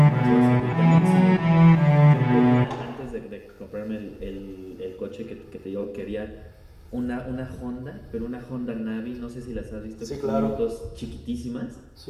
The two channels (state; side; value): identical; both; correlation 1.00